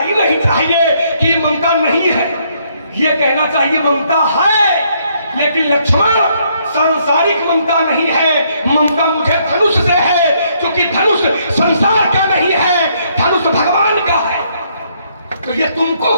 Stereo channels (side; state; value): both; inverted; correlation -0.70